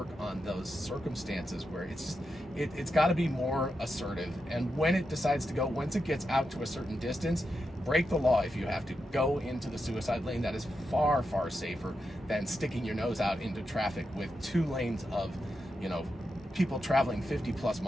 on those circumstances where it's got to be more assertive. And when it decides to go, once it gets out to a certain distance, break the law if you have to. Go into the suicide lane. That is far, far safer than sticking your nose out into traffic with 2 lanes of, people traveling 50 plus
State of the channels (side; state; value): both; normal; correlation 0.87